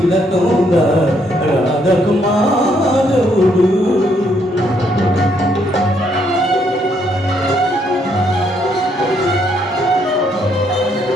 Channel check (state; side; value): normal; both; correlation 0.71